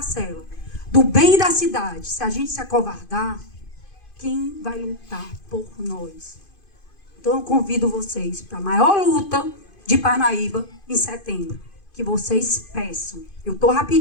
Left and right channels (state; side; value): late; right; 2.5 ms